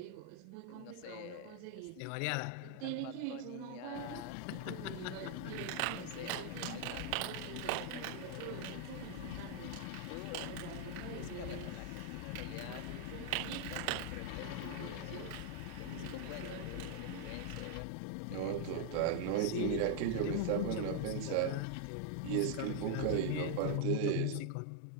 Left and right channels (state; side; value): different; both; correlation 0.00